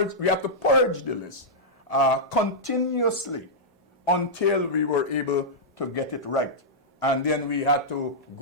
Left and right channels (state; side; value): normal; both; correlation -0.10